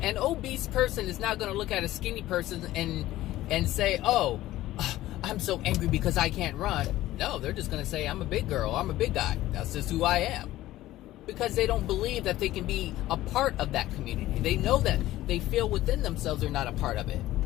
obese person is not going to look at a skinny person and say, oh, I'm so angry because I can't run. No, they're just going to say, I'm a big girl, I'm a big guy. That's just who I am. Because they don't believe that they can be a part of that community. They know that they feel within themselves they're not a part of it.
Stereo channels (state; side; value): quieter; right; 15.5 dB